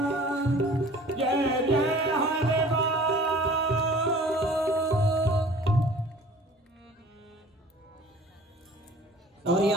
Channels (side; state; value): both; normal; correlation 0.48